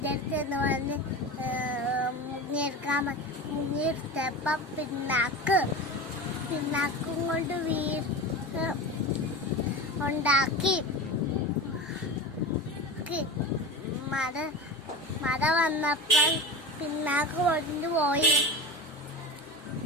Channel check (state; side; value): normal; both; correlation 0.28